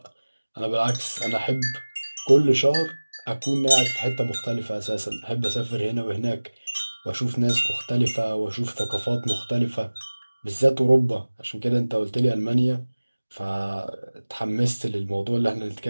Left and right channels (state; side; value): inverted; both; correlation -1.00